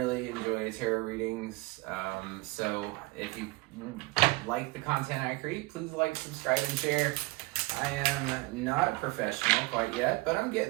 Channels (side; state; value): left; quieter; 23.6 dB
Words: enjoy tarot readings. So if you like the content I create, please like, subscribe, and share. I am not a professional quite yet, but I'm